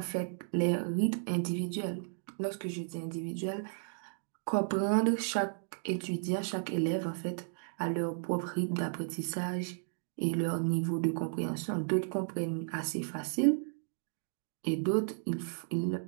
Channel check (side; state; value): left; silent; digital silence